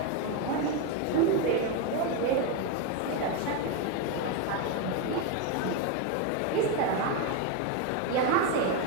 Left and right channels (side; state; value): both; different; correlation 0.02